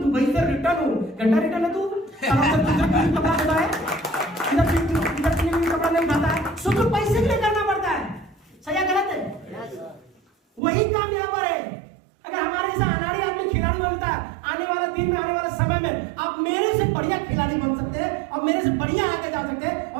से रिटर्न हूँ। घंटा रिटर्न है तू, कपड़ा धोता है, इधर कपड़ा नहीं उठाता है, सोचो पैसे के लिए करना पड़ता है। सही है गलत है? वही काम यहाँ पर है। अगर हमारे जैसा अनाड़ी आदमी खिलाड़ी बनता है, आने वाला दिन में, आने वाला समय में आप मेरे से बढ़िया खिलाड़ी बन सकते हैं और मेरे से बढ़िया आगे जा सकते हैं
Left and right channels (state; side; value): drops out; left; at 10.6 s